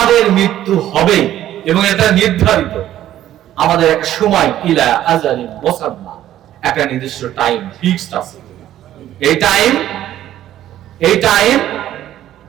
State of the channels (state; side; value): quieter; left; 12.6 dB